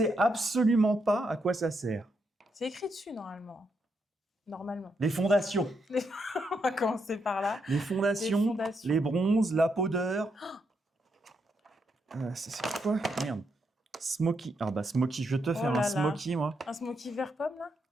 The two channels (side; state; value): both; normal; correlation 0.80